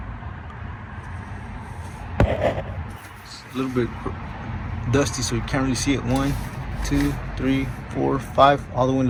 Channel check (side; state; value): both; identical; correlation 1.00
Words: It's a little bit dusty, so you can't really see it. 1, 2, 3, 4, 5, all the way in